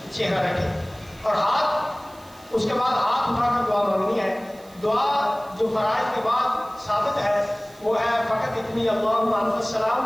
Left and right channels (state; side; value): noise; right; hiss, 25 dB below the sound